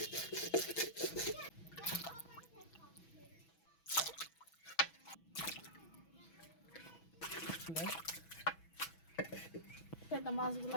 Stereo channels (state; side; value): late; right; 6.1 ms